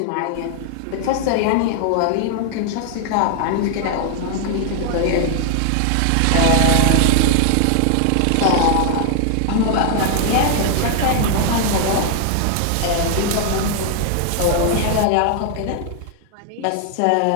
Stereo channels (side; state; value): both; different; correlation 0.00